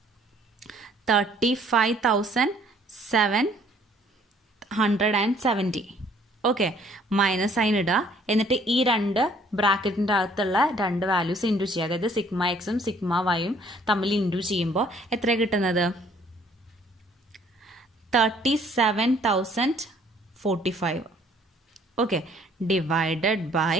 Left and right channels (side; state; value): both; normal; correlation 0.60